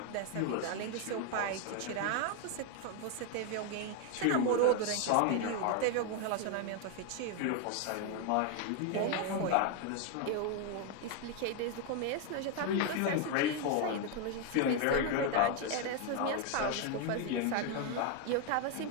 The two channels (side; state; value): both; different; correlation 0.01